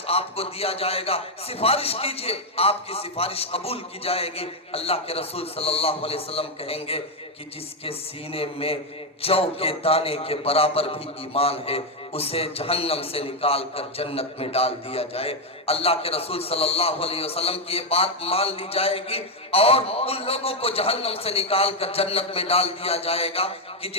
آپ کو دیا جائے گا، سفارش کیجئے آپ کی سفارش قبول کی جائے گی۔ اللہ کے رسول صلی اللہ علیہ وسلم کہیں گے کہ جس کے سینے میں جو کے دانے کے برابر بھی ایمان ہے اسے جہنم سے نکال کر جنت میں ڈال دیا جائے۔ اللہ کے رسول صلی اللہ علیہ وسلم کی یہ بات مان لی جائے گی اور ان لوگوں کو جہنم سے نکال کر جنت میں ڈال دیا جائے گا کہ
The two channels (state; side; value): normal; both; correlation 0.03